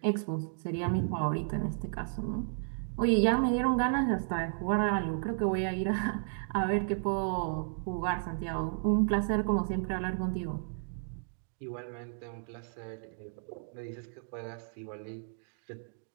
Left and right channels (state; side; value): silent; left; digital silence